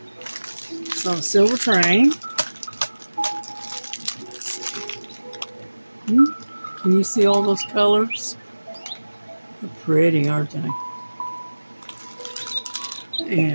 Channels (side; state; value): both; inverted; correlation -1.00